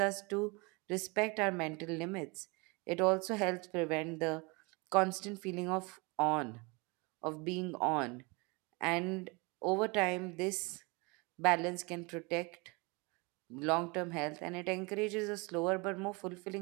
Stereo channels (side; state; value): left; quieter; 28.2 dB